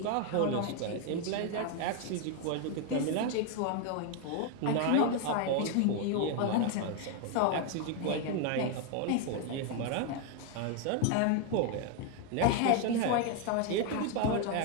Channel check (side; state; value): both; different; correlation 0.01